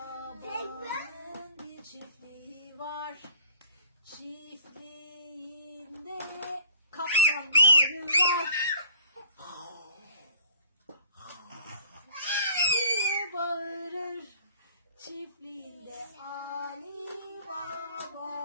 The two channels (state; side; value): inverted; both; correlation -0.51